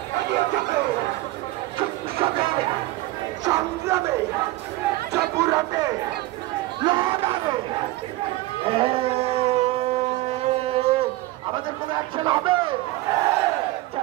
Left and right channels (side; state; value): left; quieter; 18.3 dB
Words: আমাদের কোনো অ্যাকশন হবে?